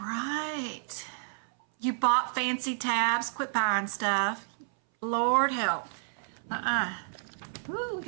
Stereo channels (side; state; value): left; silent; 58 dB below the other